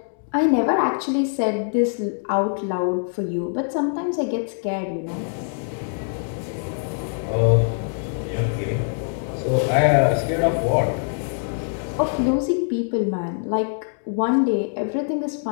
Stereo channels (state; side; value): silent; right; digital silence